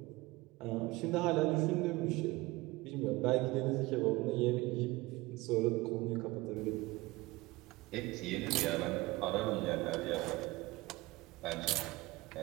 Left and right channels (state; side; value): quieter; left; 21.2 dB